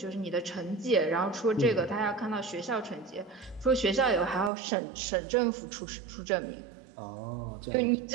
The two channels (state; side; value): drops out; left; at 4.5 s